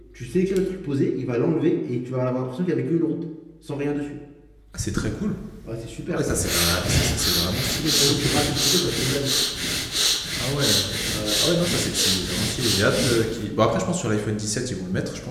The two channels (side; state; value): both; identical; correlation 1.00